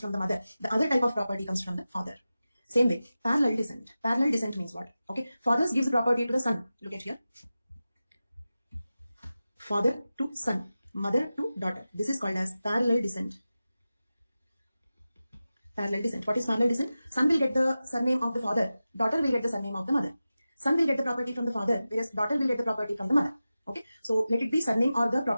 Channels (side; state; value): both; inverted; correlation -0.94